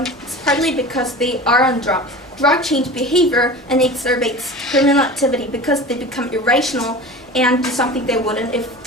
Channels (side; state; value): both; normal; correlation 0.35